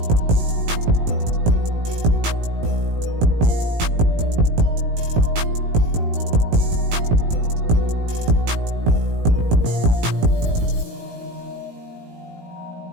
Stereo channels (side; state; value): left; late; 18 ms